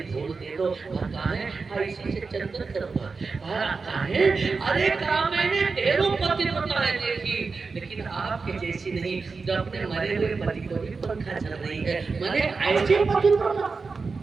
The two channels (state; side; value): quieter; left; 4.5 dB